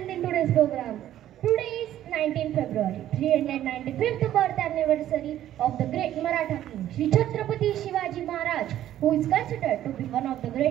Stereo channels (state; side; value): quieter; left; 12.3 dB